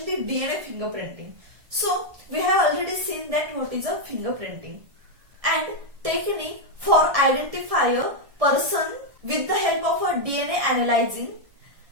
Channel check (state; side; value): late; left; 1.7 ms